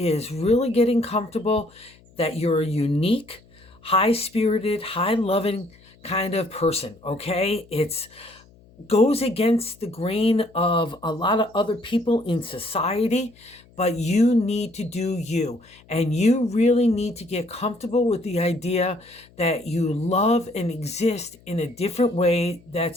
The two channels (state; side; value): noise; left; hum, 27 dB below the sound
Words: really getting comfortable that you're a unique, high-spirited, high-loving kind of person, okay? It's goes against the grain of a lot of other people in society, but you need to do you. And you really need to get comfortable with the idea that you love and exist in a different way